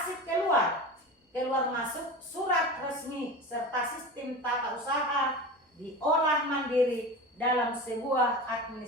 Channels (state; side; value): normal; both; correlation 0.30